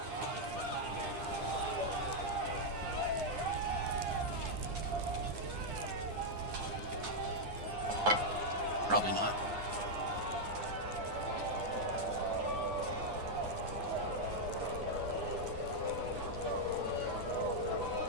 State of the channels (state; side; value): late; left; 9.6 ms